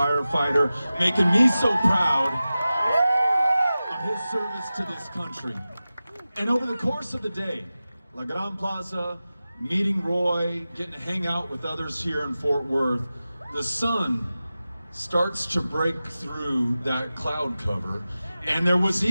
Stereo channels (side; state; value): both; inverted; correlation -0.95